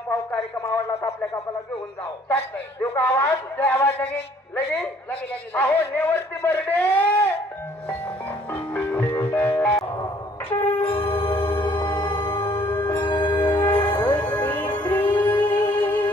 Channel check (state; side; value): normal; both; correlation 0.60